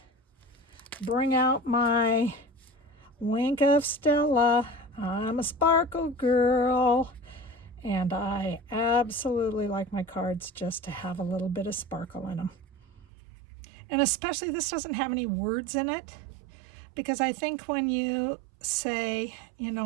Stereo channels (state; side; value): drops out; left; at 13.1 s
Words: bring out my wink of Stella. I'm a sparkle girl, and I absolutely like my cards just to have a little bit of sparkle in them. And especially this doesn't have any words in it, because I think when you say, you